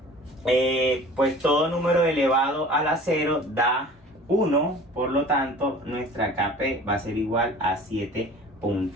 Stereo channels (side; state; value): both; normal; correlation 0.44